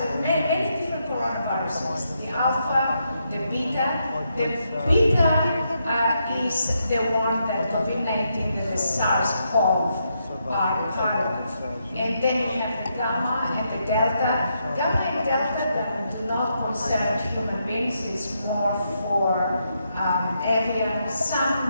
are many different coronaviruses. The alpha, the beta. The beta is the one that COVID-19, that the SARS-CoV are part of. And then you have the gamma and the delta. Gamma and delta that do not concern human beings, is more for avian,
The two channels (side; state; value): both; inverted; correlation -0.80